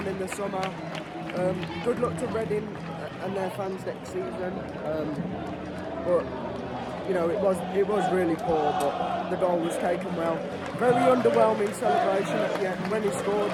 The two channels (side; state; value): both; identical; correlation 1.00